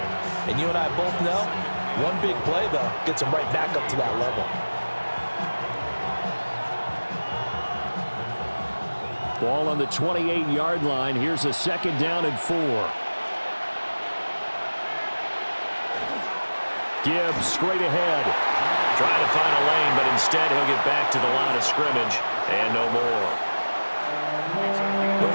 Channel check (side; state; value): both; inverted; correlation -1.00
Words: And you and I both know, one big play, though, gets them right back up to that level. Ball on the 28-yard line. Here's a 2nd down and 4. Gibbs straight ahead. Trying to find a lane, but instead he'll get back to the line of scrimmage and no more. But